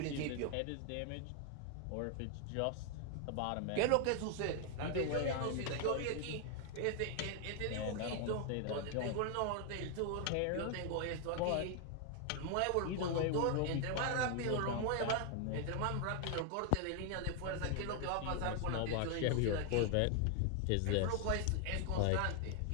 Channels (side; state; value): both; different; correlation 0.00